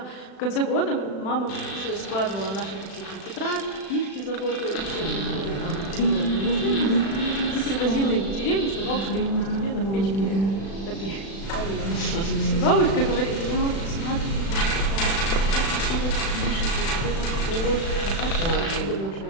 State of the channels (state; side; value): late; right; 36 ms